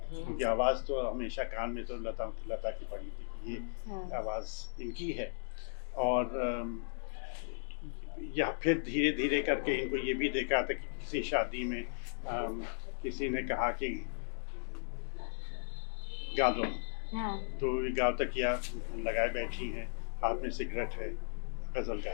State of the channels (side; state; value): right; silent; digital silence